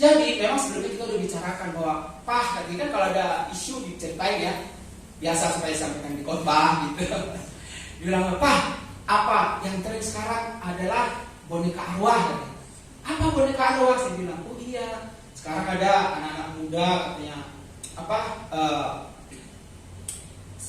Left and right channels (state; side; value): identical; both; correlation 1.00